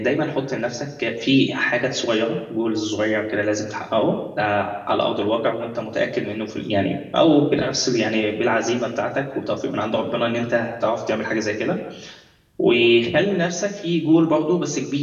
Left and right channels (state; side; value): identical; both; correlation 1.00